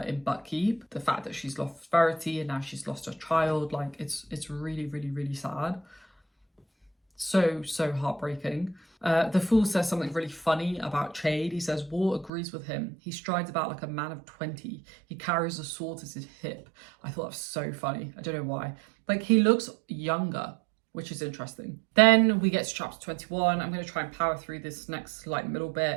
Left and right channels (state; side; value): drops out; left; at 12.3 s